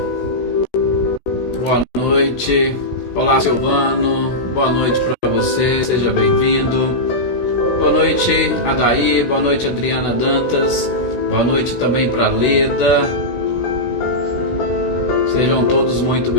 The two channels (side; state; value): right; late; 16 ms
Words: Boa noite. Olá, Silvano. Boa noite para você. Seja bem-vindo. Boa noite, Adaí. Boa noite, Adriana Dantas. Boa noite também para Leda. Sejam todos muito